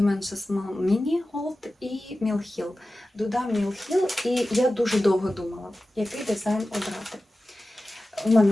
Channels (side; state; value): both; normal; correlation 0.95